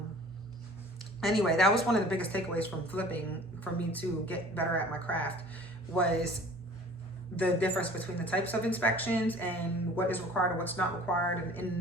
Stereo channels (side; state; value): both; normal; correlation 0.47